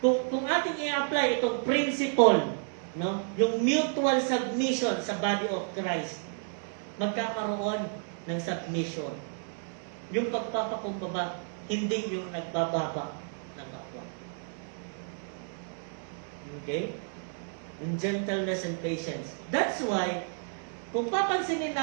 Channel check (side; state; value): left; silent; 57 dB below the other